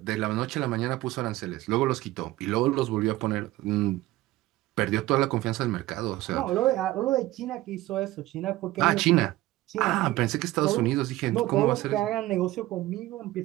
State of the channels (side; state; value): left; quieter; 16.9 dB